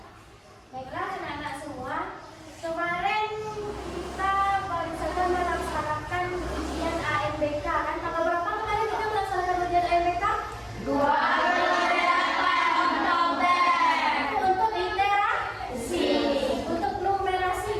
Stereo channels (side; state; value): both; identical; correlation 1.00